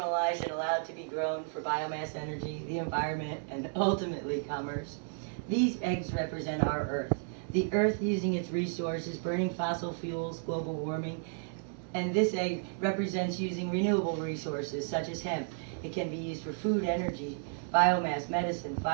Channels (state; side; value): silent; left; digital silence